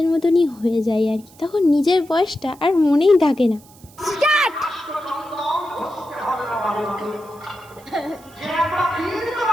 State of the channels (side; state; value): right; noise; hiss, 25 dB below the sound